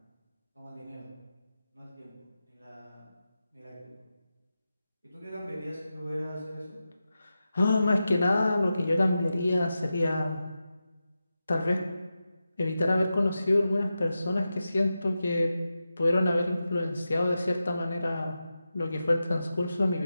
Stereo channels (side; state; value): both; inverted; correlation -0.91